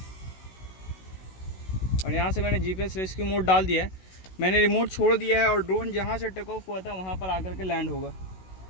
और यहाँ से मैंने GPS रेस्क्यू मोड डाल दिया है। मैंने रिमोट छोड़ दिया है और ड्रोन जहाँ से टेक ऑफ हुआ था वहाँ पर आकर के लैंड होगा।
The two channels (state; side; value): late; right; 16 ms